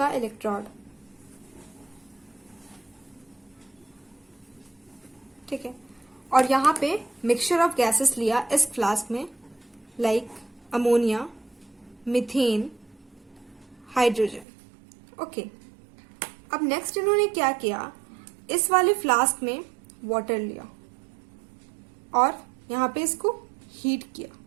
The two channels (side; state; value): left; drops out; at 14.5 s